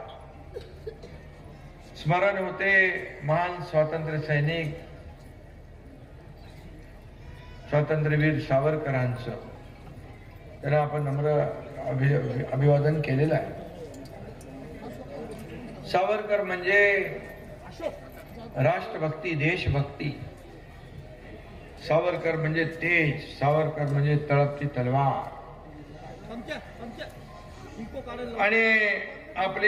स्मरण होते महान स्वातंत्र्य सैनिक स्वातंत्र्यवीर सावरकरांचं. त्यांना आपण नम्र अभिवादन केलेलं आहे. सावरकर म्हणजे राष्ट्रभक्ती, देशभक्ती. सावरकर म्हणजे तेज, सावरकर म्हणजे तळपती तलवार. आणि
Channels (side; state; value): both; identical; correlation 1.00